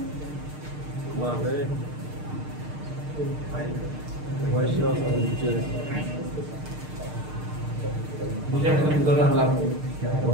বুঝে আমি তো দরকার লাভ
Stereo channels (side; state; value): left; late; 6.6 ms